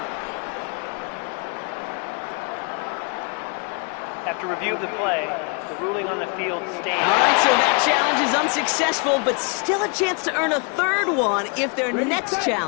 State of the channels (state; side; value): quieter; right; 35.1 dB